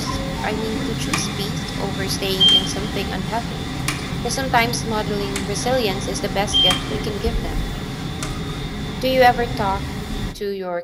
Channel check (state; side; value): identical; both; correlation 1.00